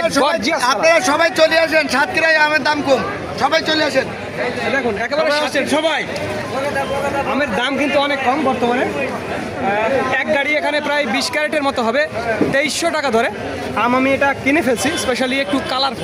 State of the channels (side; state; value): both; identical; correlation 1.00